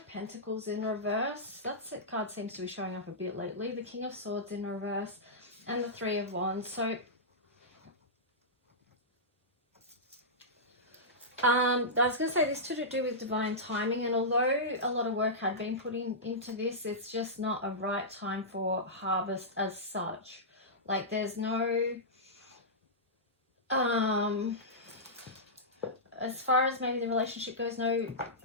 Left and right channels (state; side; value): normal; both; correlation -0.14